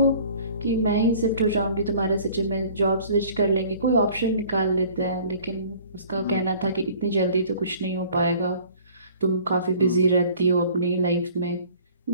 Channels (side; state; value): both; inverted; correlation -0.51